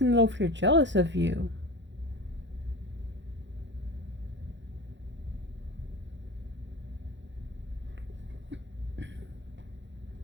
is over here jealous of you.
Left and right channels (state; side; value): late; left; 0.53 ms